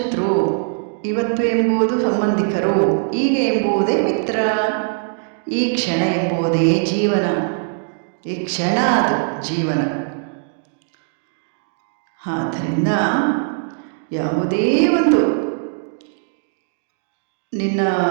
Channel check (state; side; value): silent; left; digital silence